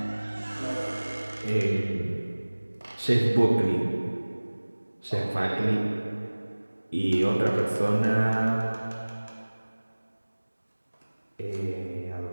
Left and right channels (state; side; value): inverted; both; correlation -1.00